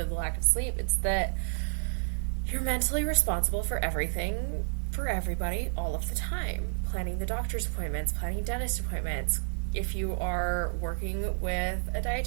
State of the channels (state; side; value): silent; left; digital silence